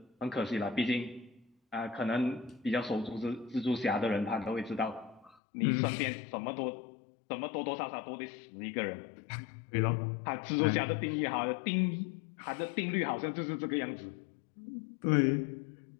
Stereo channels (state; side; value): drops out; right; at 5.4 s